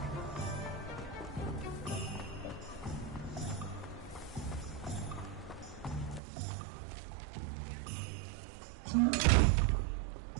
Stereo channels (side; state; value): left; drops out; at 6.2 s